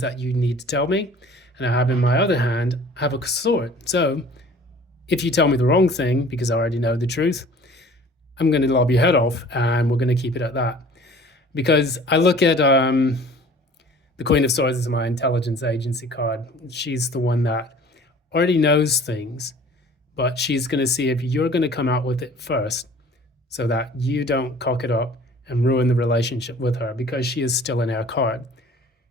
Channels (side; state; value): both; normal; correlation 0.48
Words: that you need to tell me. And I have in my other hand, I have a sword. So if you tell me the wrong thing, because I already know the truth, I'm going to lob your head off, and we're going to keep it at that. Because I look at the Queen of Swords as my intelligence agency card. She's the one that already knows things, but she's going to see if you're going to come out with it first, so that you don't cock it up and ruin the relationship with her, because she is still an air card.